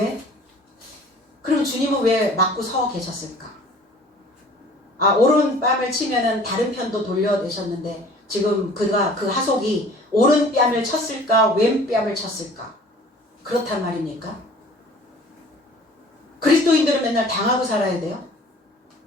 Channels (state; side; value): normal; both; correlation 0.49